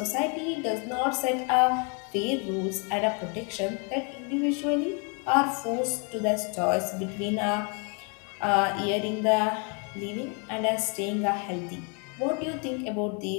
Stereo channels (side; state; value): right; quieter; 36.0 dB